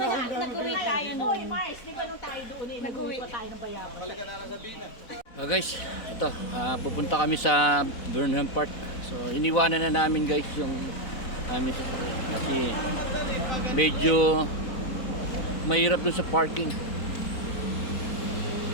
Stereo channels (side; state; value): right; late; 4.0 ms